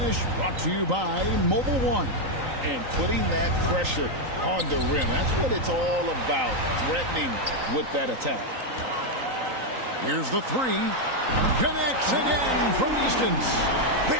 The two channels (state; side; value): late; left; 3.9 ms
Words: brought to you by Mobile One. And putting that pressure on the rim. That's what it's all about, threatening with that attack. Here's the three. Connects again from distance.